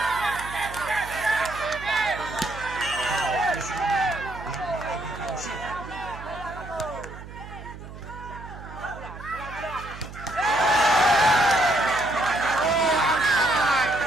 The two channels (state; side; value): noise; right; hum, 14 dB below the sound